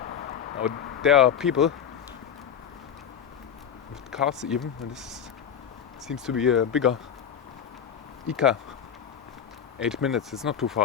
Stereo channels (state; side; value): quieter; right; 8.2 dB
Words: Now, there are people with cars even, and this seems to be a bigger ICA. 8 minutes, it's not too